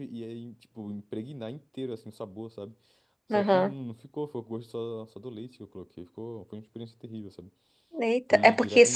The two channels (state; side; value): identical; both; correlation 1.00